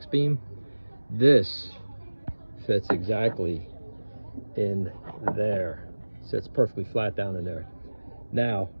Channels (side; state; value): both; inverted; correlation -1.00